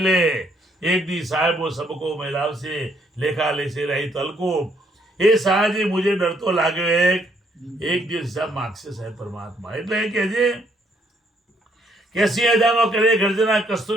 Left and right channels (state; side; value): normal; both; correlation 0.70